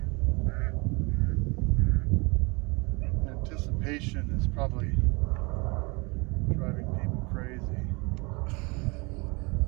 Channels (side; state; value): left; quieter; 27.9 dB